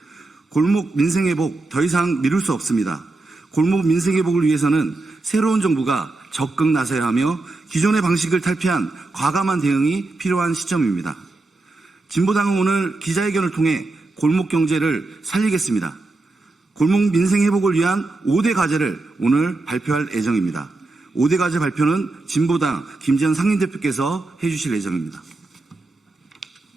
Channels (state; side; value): quieter; left; 3.2 dB